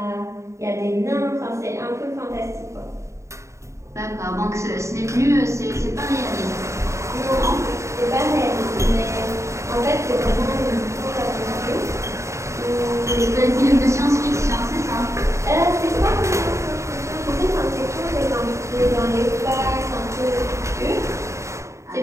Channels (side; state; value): left; late; 0.14 ms